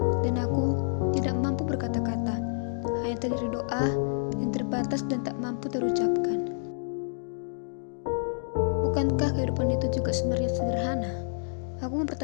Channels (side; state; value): right; silent; digital silence